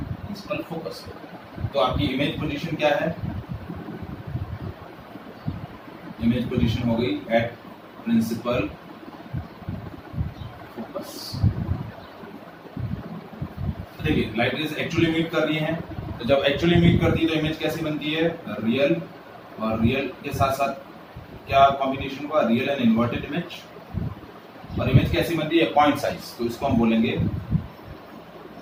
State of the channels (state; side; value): identical; both; correlation 1.00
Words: फोकस. तो आपकी इमेज पोजीशन क्या है, इमेज पोजीशन हो गई एट प्रिंसिपल फोकस. तो देखिए लाइट रेज एक्चुअली मीट कर रही हैं. तो जब एक्चुअली मीट करती है तो इमेज कैसी बनती है, रियल. और रियल के साथ साथ क्या कॉम्बिनेशन हुआ, रियल एंड इन्वर्टेड इमेज. और इमेज कैसी बनती है, पॉइंट साइज. तो इसको हम बोलेंगे